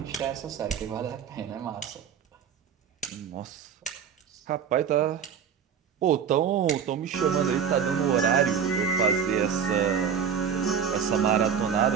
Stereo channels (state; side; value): quieter; left; 7.4 dB